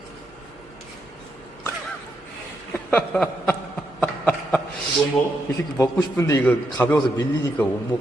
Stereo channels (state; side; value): normal; both; correlation 0.81